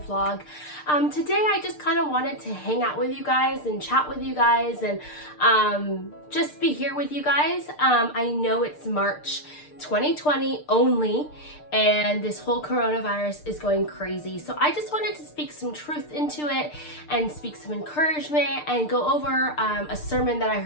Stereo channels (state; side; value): late; right; 6.7 ms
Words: Today I just kind of wanted to hang out with you guys and chat with you guys and just be here with you guys. I know it's March 2020 only, and this whole coronavirus is going crazy. So I just wanted to speak some truth into it and speak some encouragement and go over a sermon that I